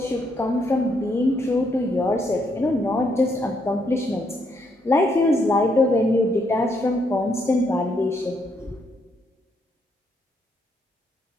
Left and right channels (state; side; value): normal; both; correlation 0.75